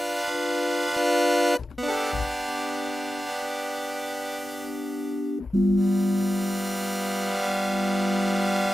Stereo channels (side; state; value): both; normal; correlation 0.93